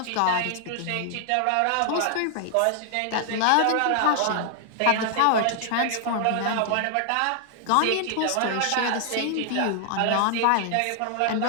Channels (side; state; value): both; different; correlation 0.00